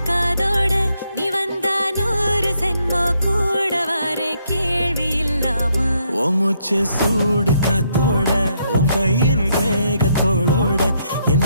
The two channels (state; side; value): inverted; both; correlation -0.75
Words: காதோட நீ வந்தா 100 சென்மோ கூட வர கேள்வி இல்லாம உன் மூச்சு சூடு காத்தோட உன் கையின் ரேகத்தோளோட